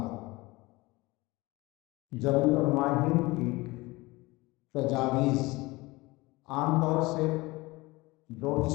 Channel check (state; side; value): quieter; right; 22.0 dB